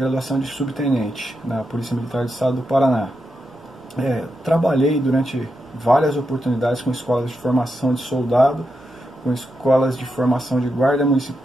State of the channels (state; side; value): normal; both; correlation 0.86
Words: de subtenente na Polícia Militar do Estado do Paraná. Trabalhei durante várias oportunidades com escolas de formação de soldado, com escolas de formação de guarda